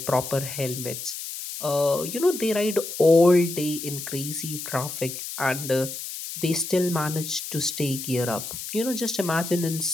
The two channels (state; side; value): noise; left; hiss, 8 dB below the sound